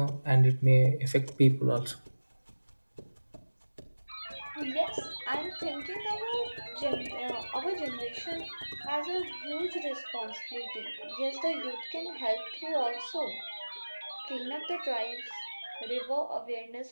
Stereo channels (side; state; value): both; inverted; correlation -1.00